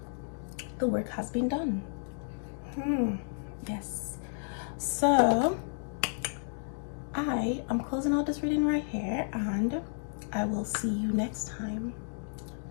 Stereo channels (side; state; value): right; silent; digital silence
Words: The work has been done. Yes. So I am closing out this reading right here, and I will see you next time.